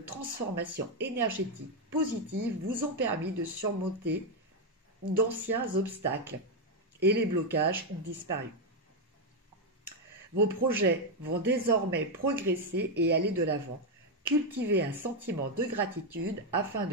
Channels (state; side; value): normal; both; correlation 0.03